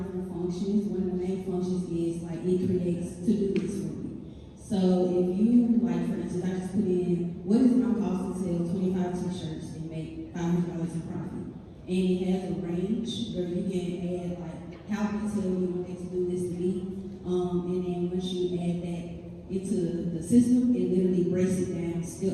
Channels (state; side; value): identical; both; correlation 1.00